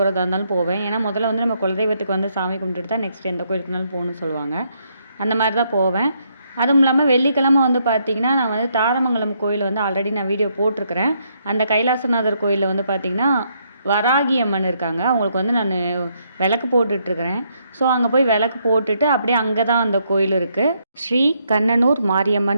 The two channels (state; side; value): inverted; both; correlation -0.74